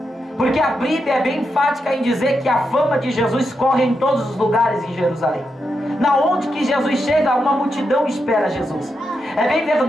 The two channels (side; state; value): both; normal; correlation 0.85